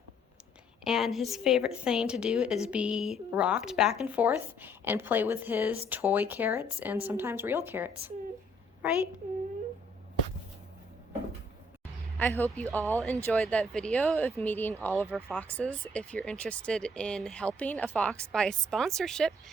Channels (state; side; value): normal; both; correlation 0.64